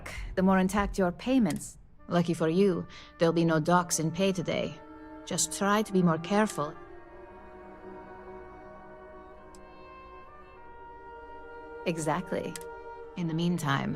the more intact your payments. Lucky for you, there'll be no docks in pay today. Just try to be more careful. Exactly. In the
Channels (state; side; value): identical; both; correlation 1.00